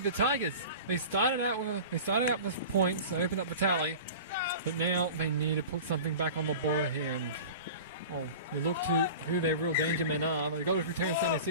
Tigers. They started out with points, they opened up the tally, but now they need to put something back on the board here. And you look to who their real danger men are. They got it through Terrence Stanley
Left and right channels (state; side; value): inverted; both; correlation -0.36